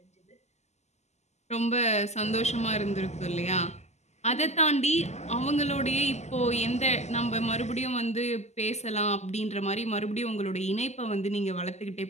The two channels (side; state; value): right; late; 0.33 ms